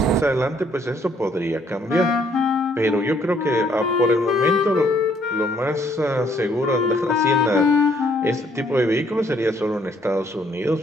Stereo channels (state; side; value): normal; both; correlation 0.67